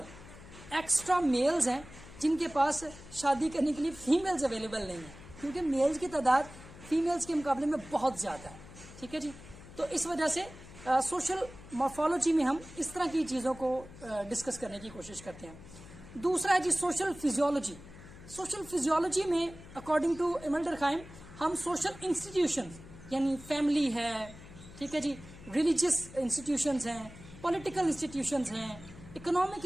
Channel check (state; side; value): noise; left; hum, 17 dB below the sound